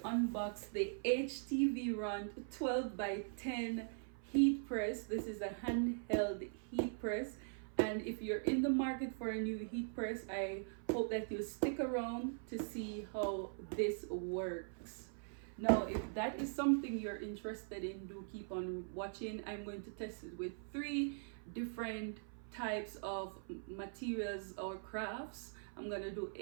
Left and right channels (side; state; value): left; silent; 50 dB below the other